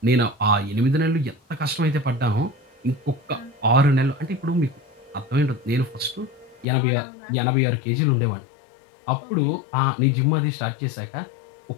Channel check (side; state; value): right; drops out; at 6.7 s